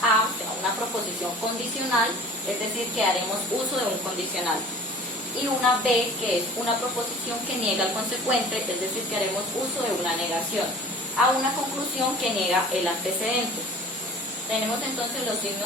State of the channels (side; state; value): both; normal; correlation 0.45